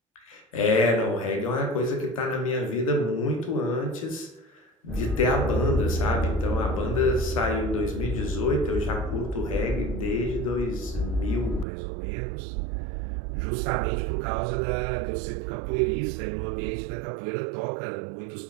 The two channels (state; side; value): drops out; left; at 11.7 s